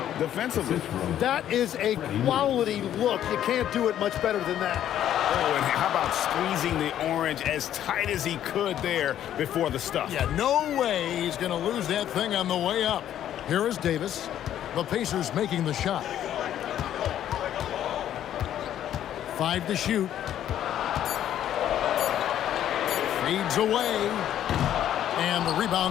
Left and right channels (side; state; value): right; quieter; 11.1 dB